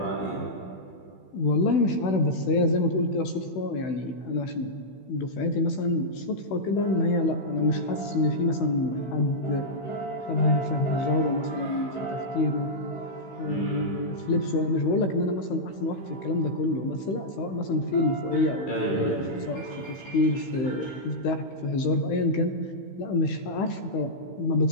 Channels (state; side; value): late; right; 16 ms